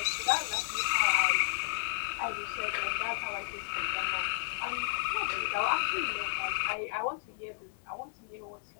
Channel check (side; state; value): right; silent; digital silence